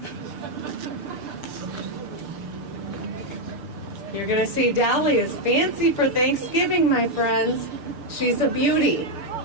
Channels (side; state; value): left; late; 6.8 ms